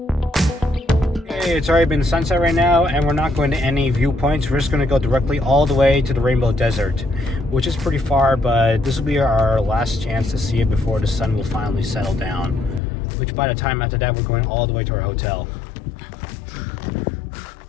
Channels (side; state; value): right; drops out; at 12.8 s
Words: Okay, it's already been sunset right now, and we're not going to any viewpoints. We're just going to go directly all the way to the Rainbow Desert, which is pretty far, but this will be our last chance to see it before the sun will finally settle down, which by the time after that, we're going all the way to our hotel.